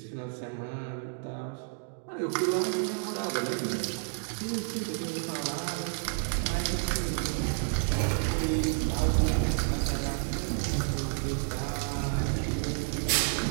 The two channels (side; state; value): left; silent; 57 dB below the other